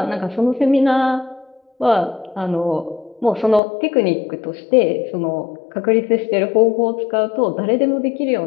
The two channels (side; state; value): right; drops out; at 3.6 s